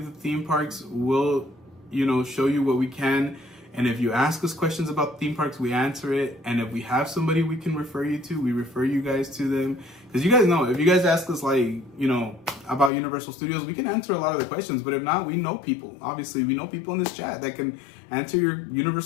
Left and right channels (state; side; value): drops out; right; at 12.9 s